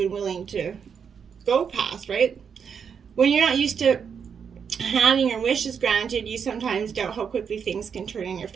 willing to go past, right? When you're not used to having your wishes granted, you sometimes doubt how quickly things can turn in your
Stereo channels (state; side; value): quieter; left; 6.9 dB